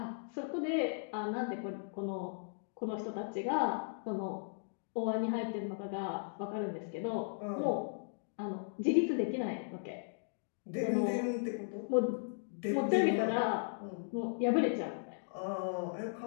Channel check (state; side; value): silent; right; digital silence